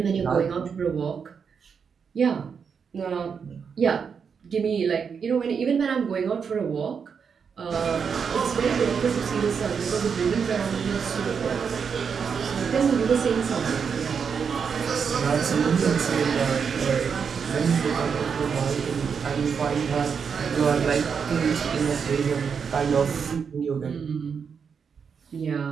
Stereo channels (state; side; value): quieter; left; 6.4 dB